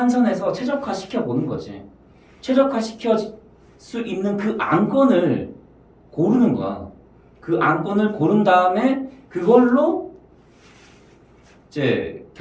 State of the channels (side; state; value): both; identical; correlation 1.00